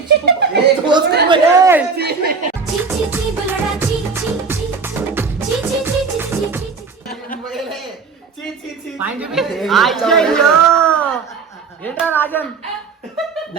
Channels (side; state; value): left; quieter; 5.0 dB